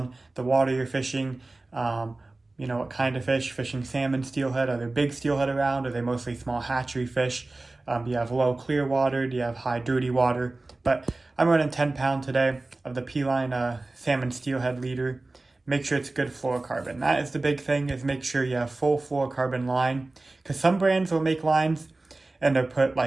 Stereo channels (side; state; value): left; quieter; 3.1 dB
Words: the water you're fishing, you know, what kind of fish. Fishing salmon, steelhead, are there big steelhead around? Are they mostly small hatchery fish? Do you have low clear water? Do you have high dirty water? But I'm running 10-pound today of the P-line salmon steelhead leader. Make sure it's good fluorocarbon. That is the big thing, is make sure you have full fluorocarbon line, because some brands will make lines and they'll put